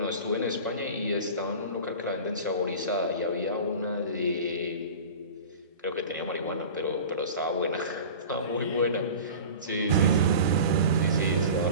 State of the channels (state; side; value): inverted; both; correlation -0.36